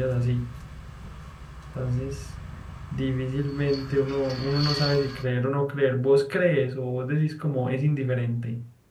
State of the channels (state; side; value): identical; both; correlation 1.00